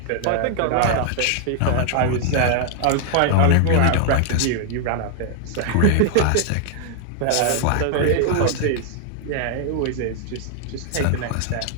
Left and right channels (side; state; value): both; different; correlation 0.00